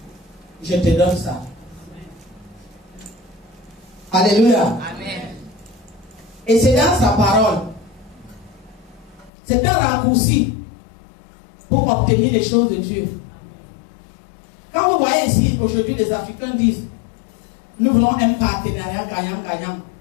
je te donne ça. Alléluia. Amen. Et c'est dans sa parole. C'est un raccourci pour obtenir les choses de Dieu. Quand vous voyez ici, aujourd'hui, les Africains disent, nous voulons un partenariat gagnant-gagnant.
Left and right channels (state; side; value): drops out; right; at 9.3 s